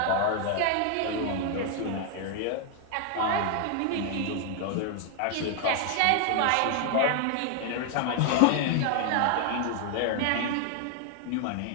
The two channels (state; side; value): different; both; correlation 0.00